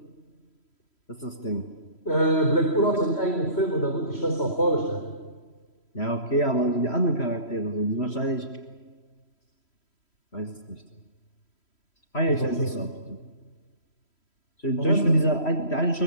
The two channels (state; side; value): late; right; 3.1 ms